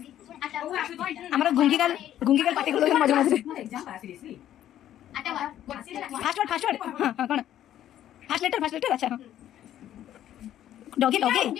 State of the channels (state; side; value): quieter; right; 11.7 dB